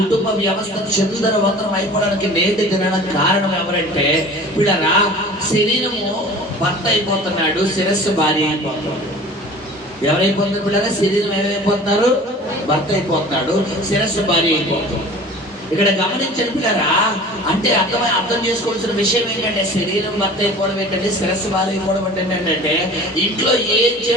వ్యవస్థ చందరవంతరం అయిపోవడానికి నేటి దినానికి కారణం ఎవరంటే పిల్లరా శరీరము భర్త అయిపోతున్నాడు, శిరస్సు భార్య అయిపోతున్నాడు. ఎవరైపోతున్నారు పిల్లరా? శరీరం ఏమైపోతున్నారు? భర్త అయిపోతున్నాడు, శిరస్సు భార్య అయిపోతుంది. ఇక్కడ గమనించండి పిల్లరా, అంటే అర్థం చేసుకోవాల్సిన విషయం ఏంటంటే శరీరం భర్త అయిపోవడం ఏంటంటే, శిరస్సు భార్య అయిపోవడం ఏంటంటే ఇంట్లో ఏం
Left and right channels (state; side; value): normal; both; correlation 0.42